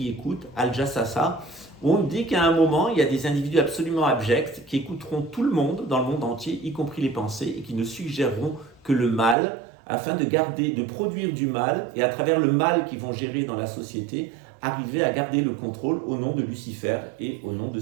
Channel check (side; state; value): left; drops out; at 9.3 s